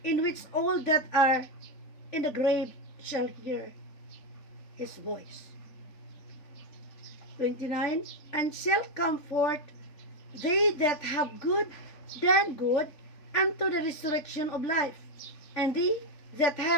in which all that are in the grave shall hear His voice. 29. And shall come forth they that have done good unto the resurrection of life, and they that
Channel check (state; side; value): late; right; 3.8 ms